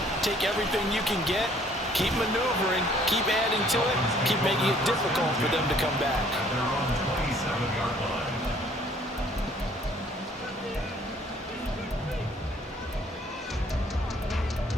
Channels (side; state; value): both; normal; correlation 0.59